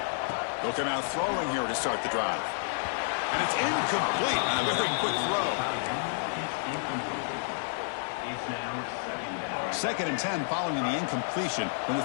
They'll come out throwing here to start the drive. And it's incomplete. A very quick throw. Second and 10 following the incompletion from the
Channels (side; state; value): right; silent; 58 dB below the other